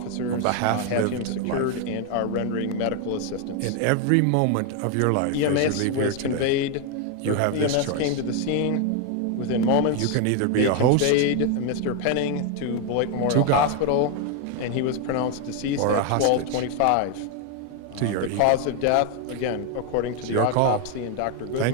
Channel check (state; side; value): different; both; correlation 0.01